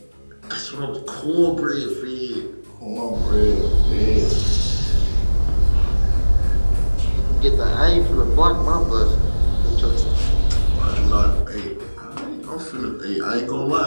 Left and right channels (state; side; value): inverted; both; correlation -1.00